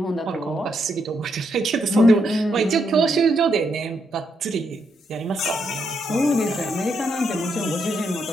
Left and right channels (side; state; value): both; normal; correlation 0.78